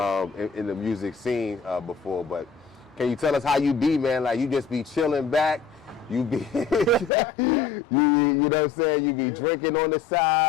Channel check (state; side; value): drops out; right; at 7.1 s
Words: the music scene before. But can you tell us how you be, man? Like, you just be chilling back, you be, you know what I'm saying? You be drinking on the